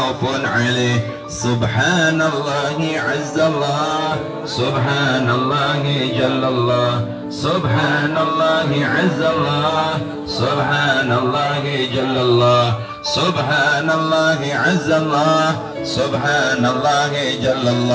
عليه سبحان الله عز الله سبحان الله جل الله سبحان الله عز الله سبحان الله جل الله سبحان الله عز الله سبحان الله جل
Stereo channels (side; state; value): both; identical; correlation 1.00